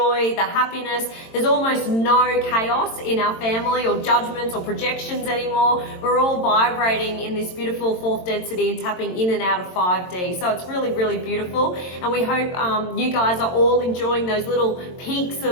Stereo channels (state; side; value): late; right; 22 ms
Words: the happiness. There's almost no chaos in our family or judgments or projections anymore. We're all vibrating in this beautiful fourth density and tapping in and out of 5D. So it's really, really beautiful, and we hope you guys are all enjoying those little peaks